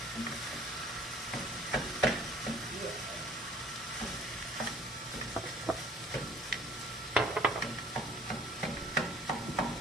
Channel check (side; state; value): both; normal; correlation 0.54